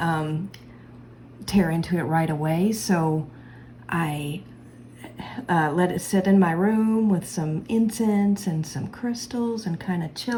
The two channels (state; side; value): identical; both; correlation 1.00